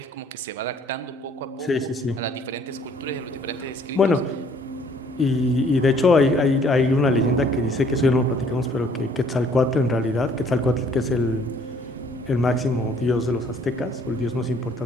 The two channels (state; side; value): normal; both; correlation 0.59